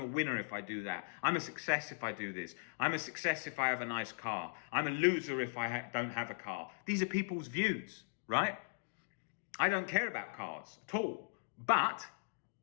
winner if I do that. I'm a success if I do this. I'm a success if I have a nice car. I'm a loser if I don't have a car. These are people's views, right? I don't care about cars at all. But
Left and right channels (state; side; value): silent; right; digital silence